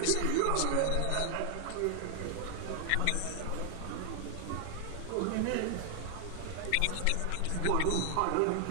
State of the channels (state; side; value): different; both; correlation 0.00